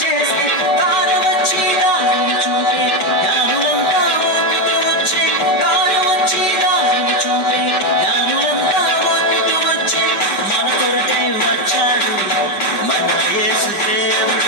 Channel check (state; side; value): late; right; 5.1 ms